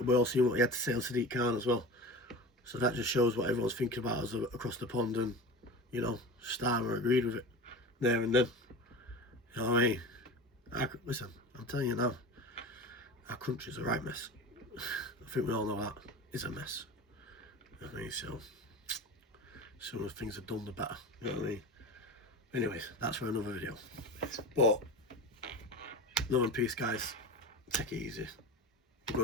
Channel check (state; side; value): normal; both; correlation 0.30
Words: he had to say on Sadiq Khan as well. So that just shows what everyone's thinking about us across the pond, and you know, Starmer agreed with it there and then. You know what I mean? Listen, I'm telling you now, our country's a right mess. I think we all know that. It's a mess. You know what I mean? So, sooner things are done, the better. You know what I mean? Anyways, that's for another video. But, love and peace, guys. Take it easy. I'm